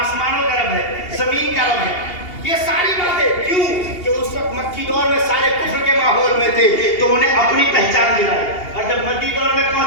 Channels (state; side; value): late; right; 2.8 ms